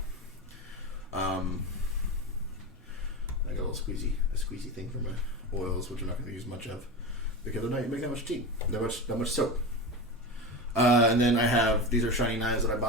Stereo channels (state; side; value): normal; both; correlation 0.23